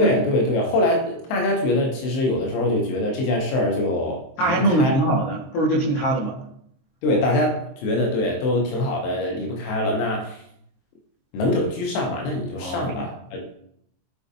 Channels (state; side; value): late; right; 23 ms